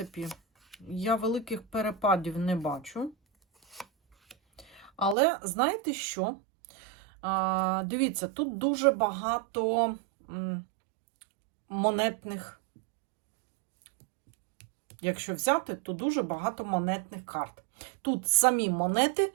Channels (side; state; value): left; drops out; at 5.2 s